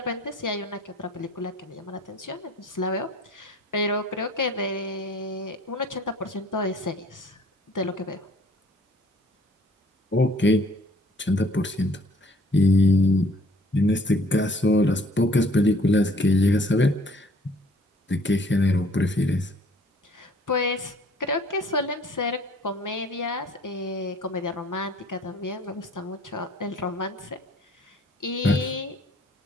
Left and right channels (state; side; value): normal; both; correlation 0.56